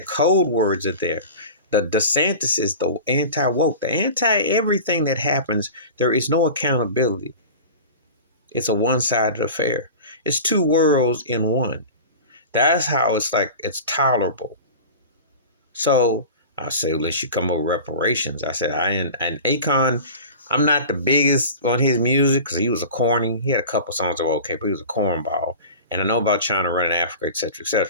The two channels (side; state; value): both; inverted; correlation -0.35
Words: code words are there. The DeSantis is the anti-woke, the anti-everything that happens. There is no accountability. It's a one-sided affair. It's two worlds in one. That's how it's tolerable. So I say, let's you come up with reparations. I said, and Akon, I'm not the biggest on his music because he was a corny. He had a couple songs that were okay, but he was a cornball. And I know about China running Africa, etc.,